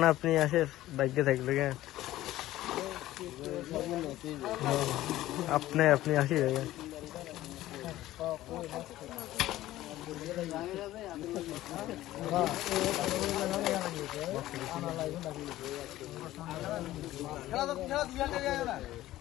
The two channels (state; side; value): quieter; right; 15.2 dB